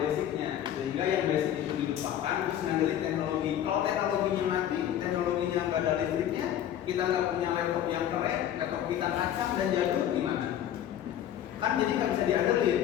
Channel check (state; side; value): quieter; right; 10.8 dB